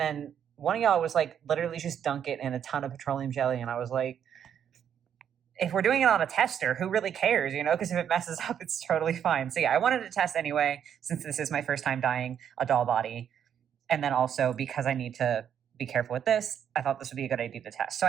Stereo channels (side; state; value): left; quieter; 8.8 dB